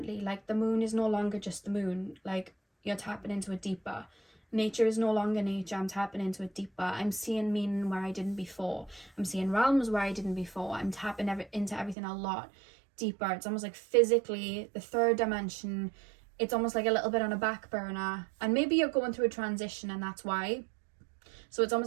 Like the moon is no longer just the moon. Like you're tapping into it deeper. Nature is no longer nature. I'm tapping into it deeper. I'm seeing meaning where I didn't before. I'm seeing realms where I didn't before. I'm tapping into everything a lot deeper. It's almost like physically, the 3rd dimension, it's almost like a little bit on a back burner. And maybe you're going through a transition, and that's why. So it's almost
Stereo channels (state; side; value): drops out; left; at 12.0 s